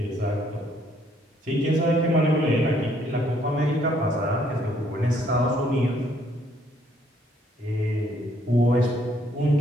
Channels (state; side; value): normal; both; correlation 0.67